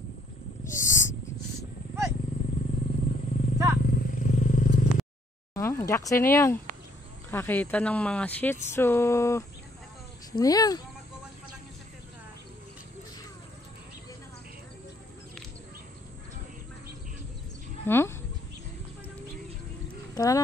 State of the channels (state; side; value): normal; both; correlation 0.66